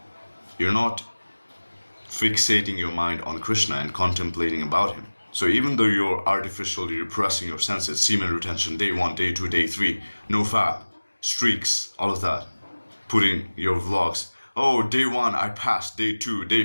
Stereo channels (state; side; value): inverted; both; correlation -1.00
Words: You're not fixating your mind on Krishna and contemplating about him. So even though you're artificially repressing your senses, semen retention, day 1, day 2, day 3, no fap, streaks, all of that, putting your vlogs, oh, day 1, I passed, day 2, day